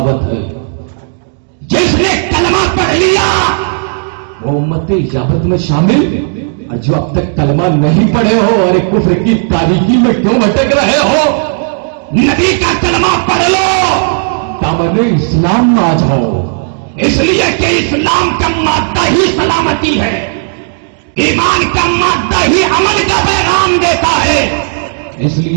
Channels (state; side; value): silent; left; digital silence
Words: ہے. جس نے کلمہ پڑھ لیا وہ امت اجابت میں شامل، اور جو اب تک کلمہ نہیں پڑھے ہو، ارے کفر کی تاریکی میں کیوں بھٹک رہے ہو؟ نبی کا کلمہ پڑھ لو، دامن اسلام میں آ جاؤ. اس لیے کہ اسلام کا مادہ ہی سلامتی ہے، ایمان کا مادہ ہی عمل کا پیغام دیتا ہے. اس